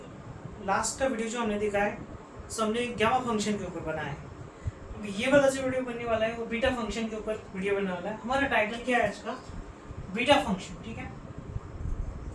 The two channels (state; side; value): identical; both; correlation 1.00